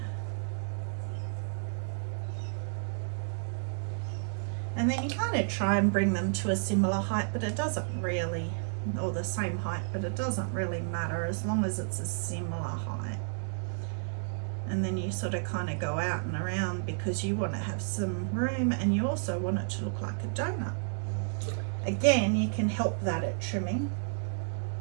And then you kind of try and bring them to a similar height, but it doesn't really, or the same height, but it doesn't really matter as long as it's a similar height. And then you sort of kind of go out and around because you want to have some room and you also want it to look like a donut. Again, you can help that at trimming.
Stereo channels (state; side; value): silent; left; 57 dB below the other